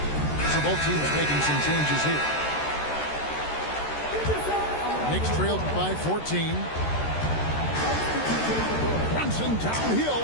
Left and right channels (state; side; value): late; right; 13 ms